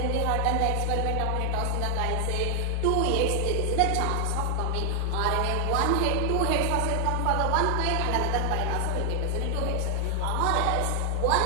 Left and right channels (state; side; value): different; both; correlation 0.00